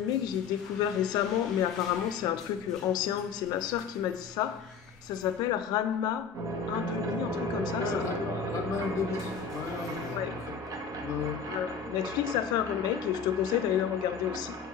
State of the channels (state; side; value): quieter; right; 6.6 dB